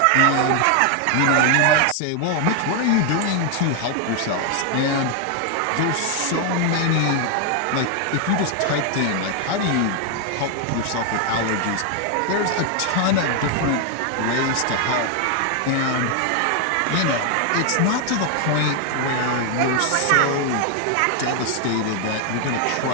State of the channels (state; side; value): different; both; correlation 0.01